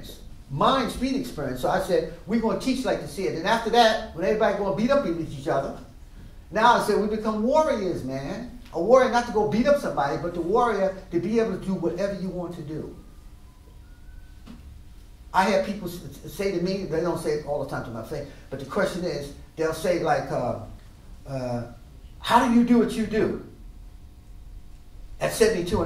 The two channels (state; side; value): identical; both; correlation 1.00